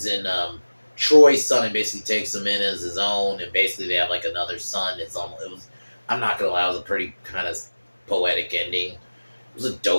in Troy's son and basically takes him in as his own, and basically they have like another son. It was, I'm not gonna lie, it was a pretty kind of poetic ending. It was a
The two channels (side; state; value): both; inverted; correlation -1.00